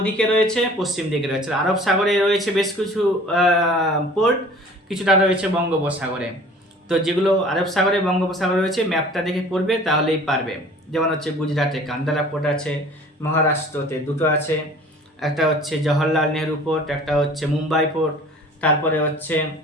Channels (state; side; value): normal; both; correlation 0.47